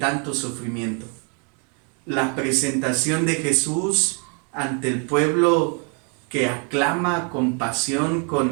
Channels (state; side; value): quieter; left; 37.6 dB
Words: sufrimiento. La presentación de Jesús ante el pueblo que aclama con pasión,